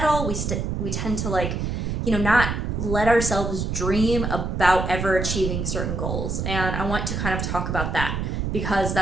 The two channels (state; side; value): noise; right; rumble, 2 dB below the sound